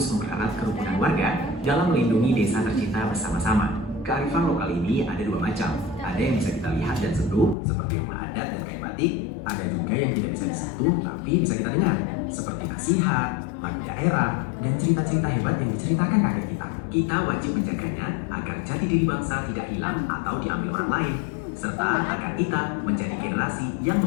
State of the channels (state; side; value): drops out; right; at 7.6 s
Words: mempererat kerukunan warga dalam melindungi desa tercinta bersama-sama. Kearifan lokal ini ada dua macam. Ada yang bisa kita lihat dan sentuh, seperti rumah adat dan kain batik. Ada juga yang tidak bisa disentuh, tapi bisa kita dengar, seperti nasihat, lagu daerah, dan cerita-cerita hebat yang diceritakan kakek kita. Kita wajib menjaganya agar jati diri bangsa tidak hilang atau diambil orang lain, serta agar kita menjadi generasi yang